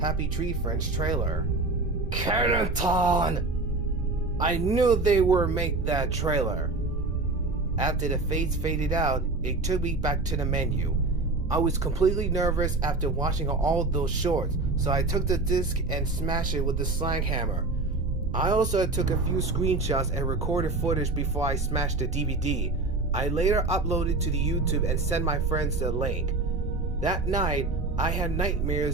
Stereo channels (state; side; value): quieter; left; 3.3 dB